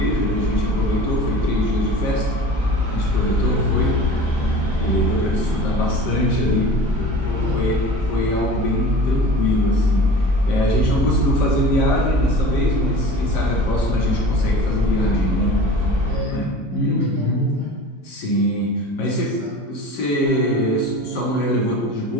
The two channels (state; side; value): normal; both; correlation 0.39